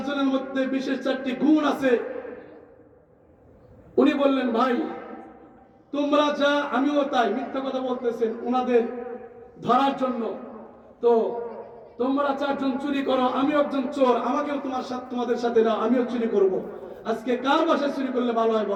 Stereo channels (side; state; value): both; identical; correlation 1.00